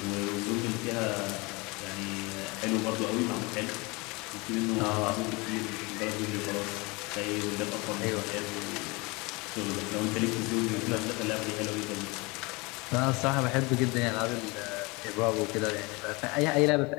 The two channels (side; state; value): right; quieter; 26.0 dB